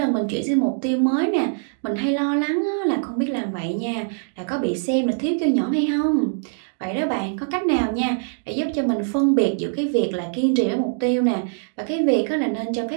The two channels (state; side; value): silent; left; digital silence